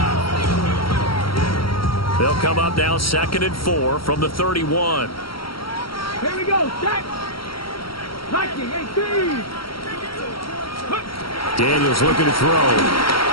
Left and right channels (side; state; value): right; late; 0.74 ms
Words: They'll come up now 2nd and 4 from the 31. Here we go, check. Nike, 18. Daniels looking to throw.